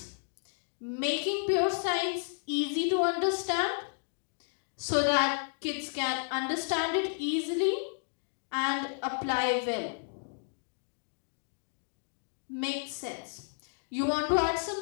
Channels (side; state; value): right; silent; digital silence